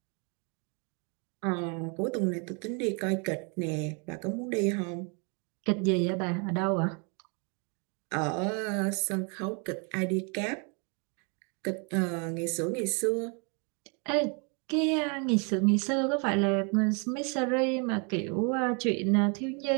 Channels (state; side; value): quieter; left; 35.6 dB